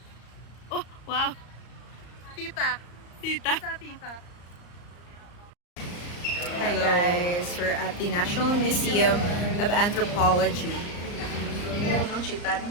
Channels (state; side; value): late; right; 34 ms